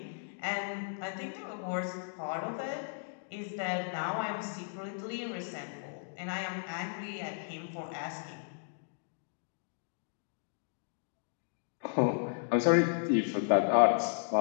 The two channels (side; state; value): right; silent; digital silence